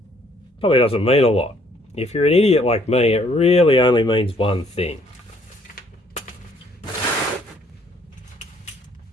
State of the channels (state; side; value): normal; both; correlation 0.64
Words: probably doesn't mean a lot. If you're an idiot like me, it really only means one thing.